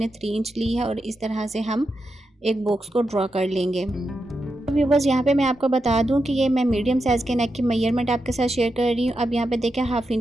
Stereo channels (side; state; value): both; normal; correlation 0.87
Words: 3 इंच ली है। और इस तरह से हम एक बॉक्स को ड्रॉ कर लेंगे। व्यूवर्स, यहाँ पे मैं आपको बता दूं कि ये मैं मीडियम साइज़ के नेक की मेजरमेंट आपके साथ शेयर कर रही हूँ। अब यहाँ पे देखें, 1/2